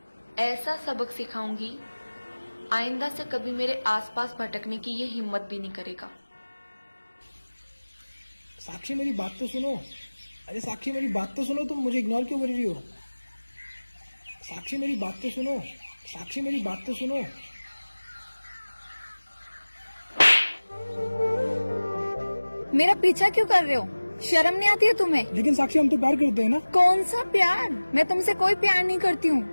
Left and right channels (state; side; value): inverted; both; correlation -1.00